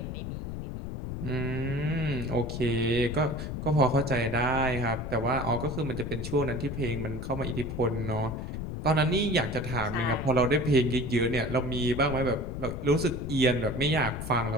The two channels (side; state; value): left; noise; rumble, 6 dB below the sound